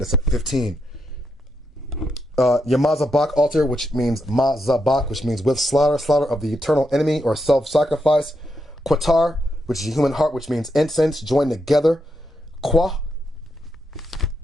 at 15. Your mazabak altar, which means mazabak, which means with slaughter of the eternal enemy or self-sacrifice. Qatar, which is a human heart, which means incense joined together. Qua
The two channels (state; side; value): normal; both; correlation 0.82